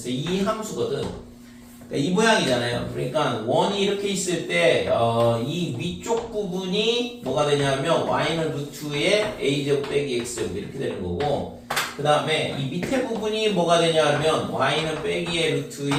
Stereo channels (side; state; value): both; identical; correlation 1.00